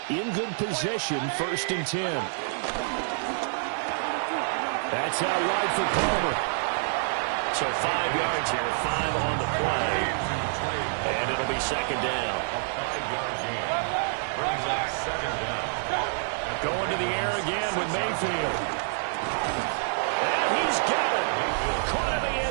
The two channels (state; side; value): silent; left; digital silence